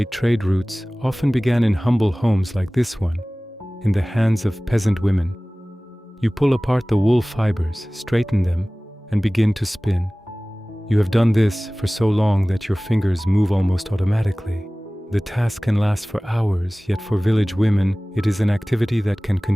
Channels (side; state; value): both; normal; correlation 0.98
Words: trade routes often began in humble homes like this one, in the hands of peasant women. You pull apart the wool fibers, straighten them, and begin to spin. You have done this for so long that your fingers move almost automatically. The task can last for hours, yet for village women, it is an activity that can